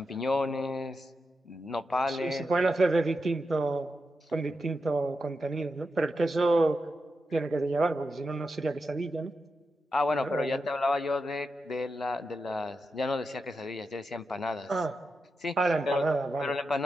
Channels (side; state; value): both; normal; correlation 0.88